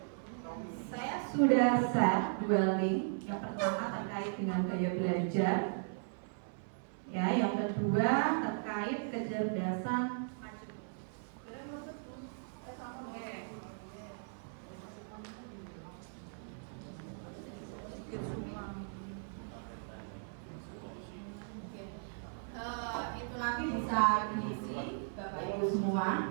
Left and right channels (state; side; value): silent; left; 53 dB below the other